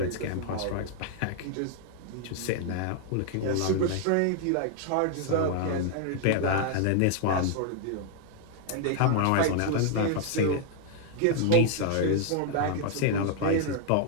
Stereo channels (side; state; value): both; different; correlation 0.00